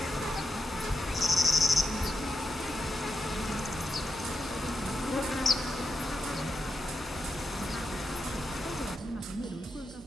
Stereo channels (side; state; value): both; normal; correlation 0.85